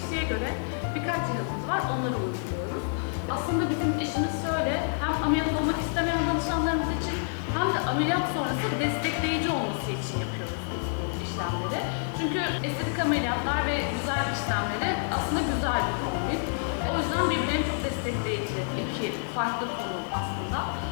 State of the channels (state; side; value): silent; right; digital silence